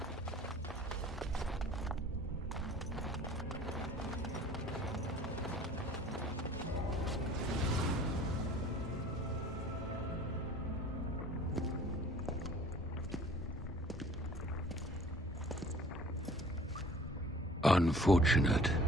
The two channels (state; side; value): normal; both; correlation 0.50